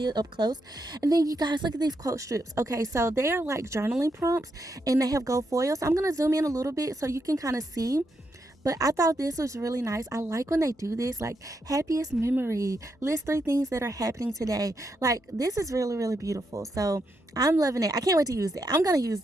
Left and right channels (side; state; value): both; normal; correlation 0.81